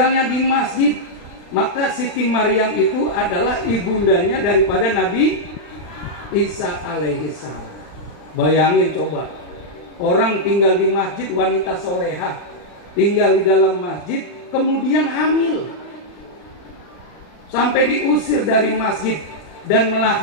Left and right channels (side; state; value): right; late; 40 ms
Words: di masjid. Maka Siti Maryam itu adalah ibundanya daripada Nabi Isa alaihissalam. Bayangin coba, orang tinggal di masjid, wanita soleha, tinggal di dalam masjid, kemudian hamil, sampai diusir dari masjid dan